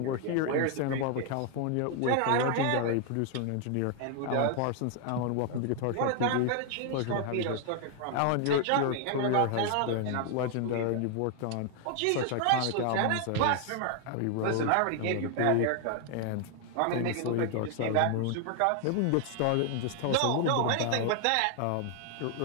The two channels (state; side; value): different; both; correlation 0.00